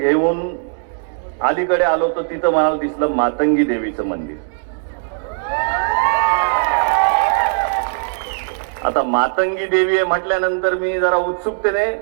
अलीकडे आलो तर तिथं मला दिसलं मातंगी देवीचं मंदिर. आता मातंगी देवी आहे म्हटल्यानंतर मी जरा उत्सुकतेने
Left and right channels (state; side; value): silent; left; digital silence